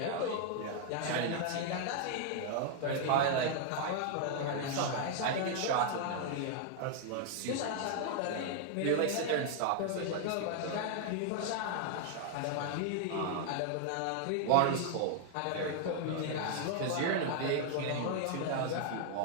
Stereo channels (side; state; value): both; different; correlation 0.00